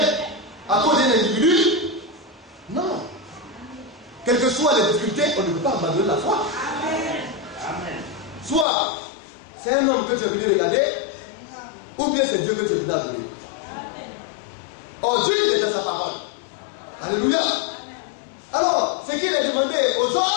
À cause d'un individu? Non. Quelles que soient les difficultés, on ne peut pas abandonner la foi. Amen. Soit c'est un homme que tu es venu regarder, ou bien c'est Dieu que tu es venu adorer. Or Dieu il est dans sa parole. Alléluia. Alors, ce qu'il est demandé aux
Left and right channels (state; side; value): drops out; right; at 8.7 s